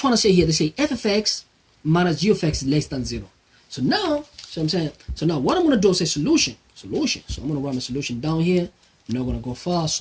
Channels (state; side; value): identical; both; correlation 1.00